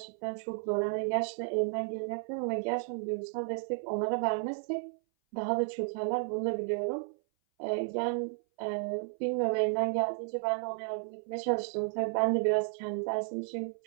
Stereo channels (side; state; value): left; silent; 56 dB below the other